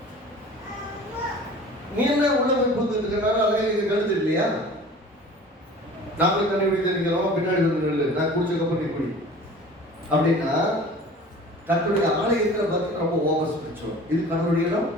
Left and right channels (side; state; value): both; normal; correlation 0.43